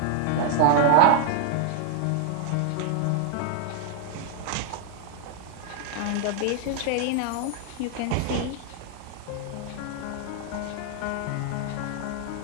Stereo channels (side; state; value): both; different; correlation 0.00